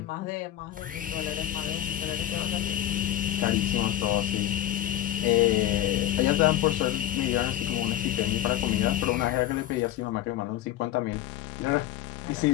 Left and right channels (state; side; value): quieter; right; 12.6 dB